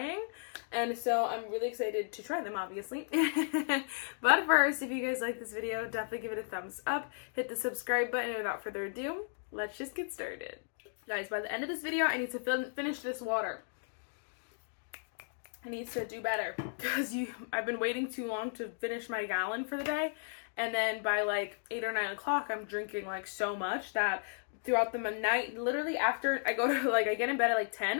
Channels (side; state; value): right; silent; digital silence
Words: And so I'm really excited to try them, obviously. But first, if you guys like this video, definitely give it a thumbs up. Hit the subscribe button, and without further ado, let's just get started. Guys, by the end of this video, I need to finish this water. I need to do better because I've been waiting too long to finish my gallon for the day, and then by like 8 or 9 o'clock I'm drinking like so much that throughout the night, literally after I go to I get in bed at like